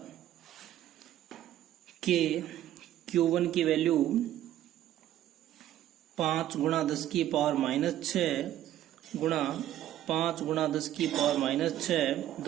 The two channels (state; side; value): quieter; left; 12.6 dB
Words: के Q1 की वैल्यू 5 गुणा 10 की पावर माइनस 6 गुणा 5 गुणा 10 की पावर माइनस 6,